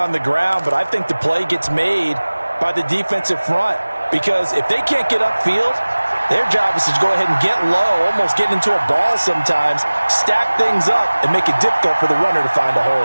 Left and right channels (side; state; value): both; inverted; correlation -1.00